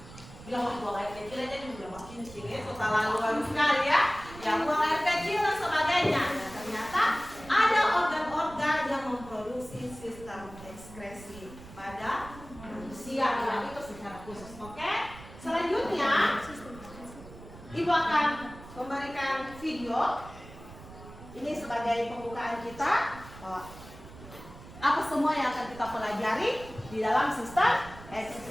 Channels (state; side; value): noise; right; rumble, 17 dB below the sound